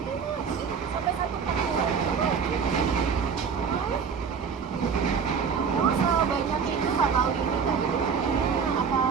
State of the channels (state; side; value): quieter; left; 6.3 dB